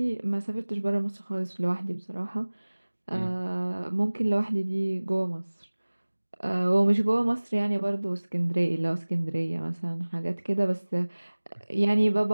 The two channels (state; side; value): inverted; both; correlation -1.00